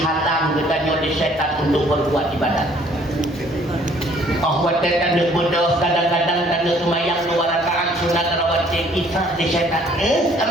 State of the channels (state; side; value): normal; both; correlation 0.59